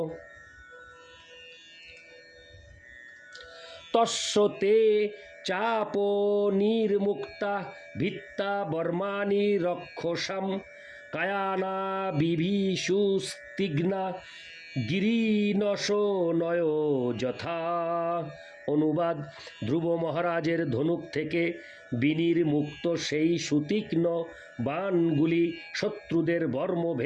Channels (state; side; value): identical; both; correlation 1.00